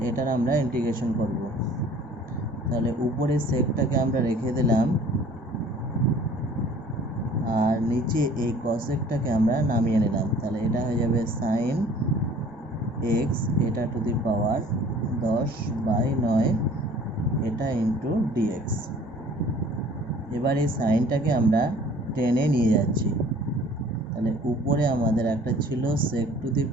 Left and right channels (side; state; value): both; normal; correlation 0.51